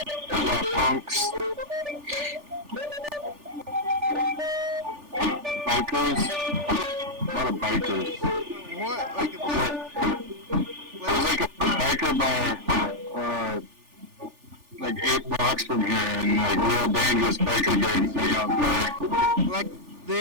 a lot of punks. Bikers. A lot of bikers. What? There's like a biker bar, like 8 blocks from here, and like real dangerous biker gangs hang out there. Like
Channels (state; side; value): late; left; 3.4 ms